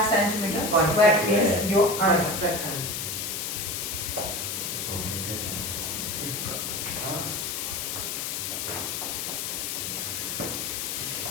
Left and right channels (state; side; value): noise; left; hiss, 3 dB below the sound